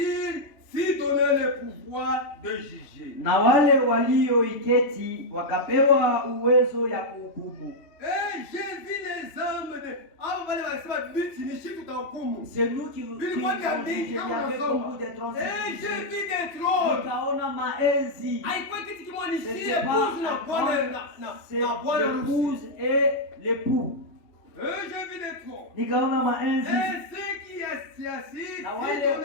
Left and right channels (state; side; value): late; right; 2.9 ms